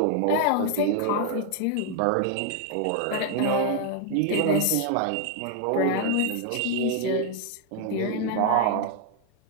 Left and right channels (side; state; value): both; different; correlation 0.00